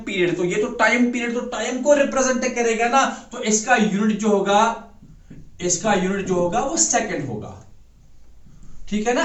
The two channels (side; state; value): both; identical; correlation 1.00